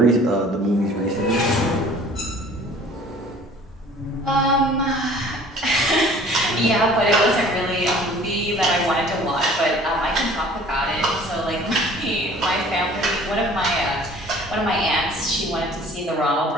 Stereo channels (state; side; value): normal; both; correlation 0.50